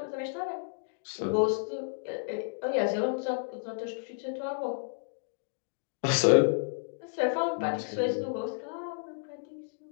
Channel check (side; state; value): right; silent; digital silence